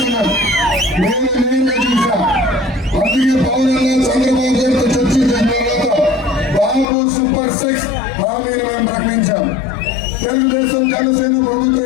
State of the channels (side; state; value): right; drops out; at 6.9 s